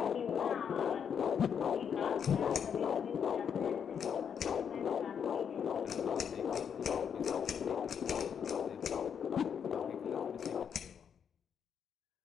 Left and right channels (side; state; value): right; quieter; 7.6 dB